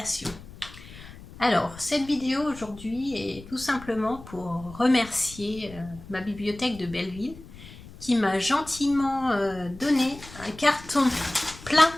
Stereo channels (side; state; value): left; noise; rumble, 17 dB below the sound